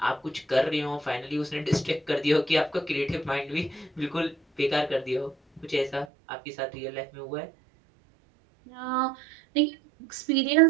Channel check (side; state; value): left; drops out; at 6.1 s